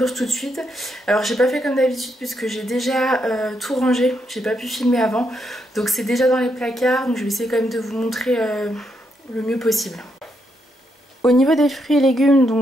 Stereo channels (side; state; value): both; normal; correlation 0.79